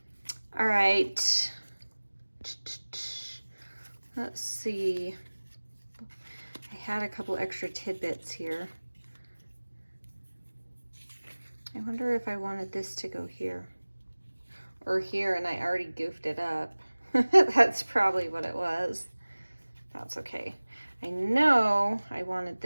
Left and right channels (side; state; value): both; inverted; correlation -1.00